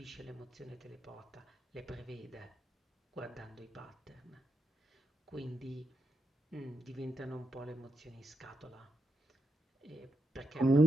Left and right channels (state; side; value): normal; both; correlation 0.84